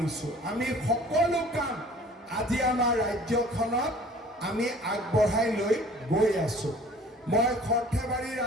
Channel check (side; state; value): both; normal; correlation 0.49